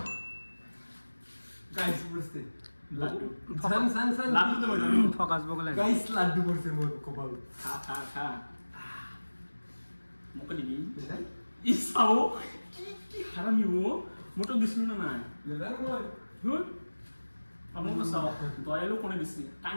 Guys, বুঝতে. লাড্ডু সান লাড্ডু তো বলে ফকাস বগলে গাইস লাড্ডু করছে মোর কপাল খা মুকে দিবি ইসাও কি হারামি ও মোটো দিছিল না নাই লেদার মই হুন আমো সাও দয়ালু কোনে দিছি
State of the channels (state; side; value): inverted; both; correlation -1.00